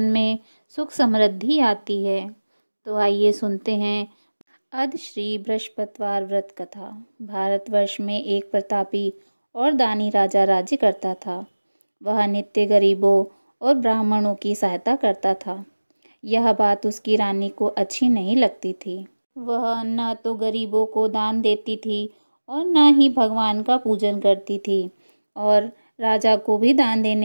में सुख समृद्धि आती है। तो आइए सुनते हैं अद श्री बृहस्पतिवार व्रत कथा। भारतवर्ष में एक प्रतापी और दानी राजा राज्य करता था। वह नित्य गरीबों और ब्राह्मणों की सहायता करता था। यह बात उसकी रानी को अच्छी नहीं लगती थी। वह न तो गरीबों को दान देती थी और न ही भगवान का पूजन करती थी और राजा को भी दान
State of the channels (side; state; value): both; inverted; correlation -1.00